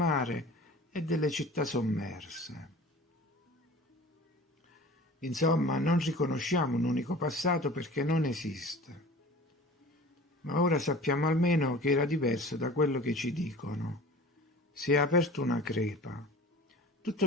e delle città sommerse. Insomma, non riconosciamo un unico passato perché non esiste. Ma ora sappiamo almeno che era diverso da quello che ci dicono. Si è aperta una crepa.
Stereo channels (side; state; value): both; normal; correlation 0.41